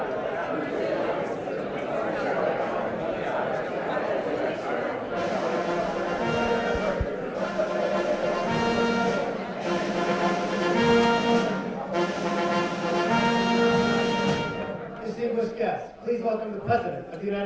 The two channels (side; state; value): both; identical; correlation 1.00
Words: Distinguished guests, please welcome the President of the